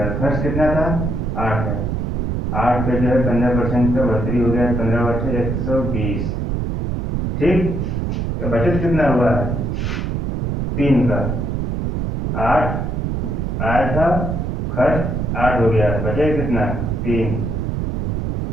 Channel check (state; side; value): noise; right; rumble, 1 dB below the sound